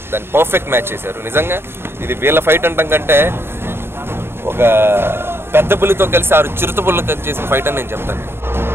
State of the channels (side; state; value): left; late; 0.11 ms